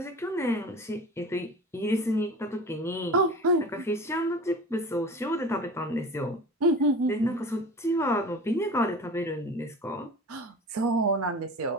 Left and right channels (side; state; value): both; normal; correlation 0.37